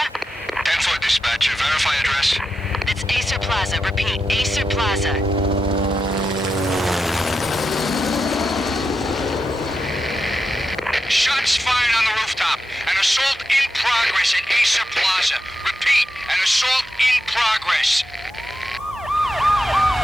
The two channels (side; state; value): both; normal; correlation 0.88